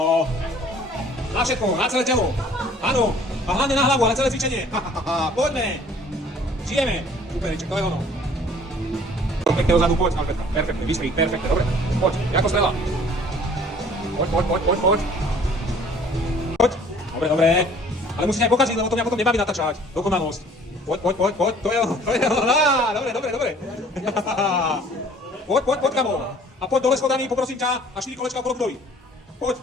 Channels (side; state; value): both; normal; correlation 0.53